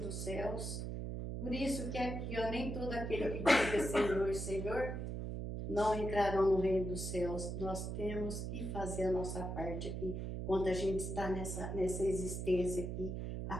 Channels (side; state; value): right; noise; hum, 4 dB below the sound